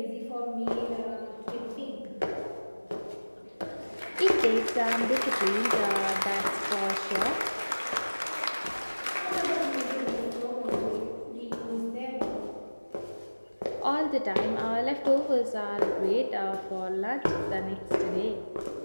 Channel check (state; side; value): inverted; both; correlation -1.00